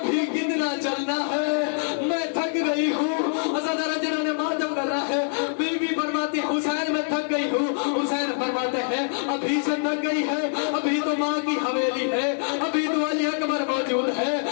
कितना चलना है, मैं थक गई हूँ। अज़ादारों जिन्होंने मातम कर रहा है, बीबी फरमाती हुसैन मैं थक गई हूँ। हुसैन फरमाते हैं अभी से थक गई है, अभी तो माँ की हवेली है, अभी तो अली अकबर मौजूद है,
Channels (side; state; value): right; silent; digital silence